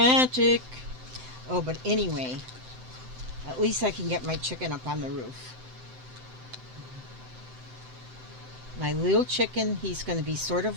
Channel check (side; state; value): left; late; 7.8 ms